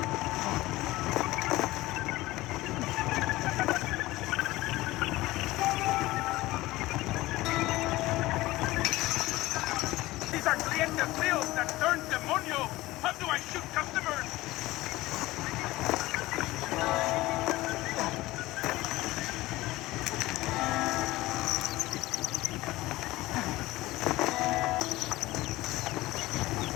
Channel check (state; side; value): quieter; right; 18.5 dB